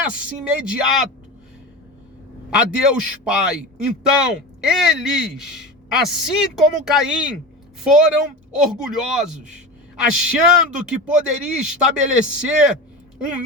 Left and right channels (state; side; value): normal; both; correlation 0.27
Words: imediato a Deus Pai. Então, eles, assim como Caim, foram orgulhosos, achando que poderia estabelecer um